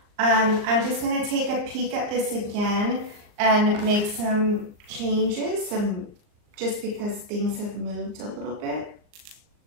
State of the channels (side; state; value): left; late; 38 ms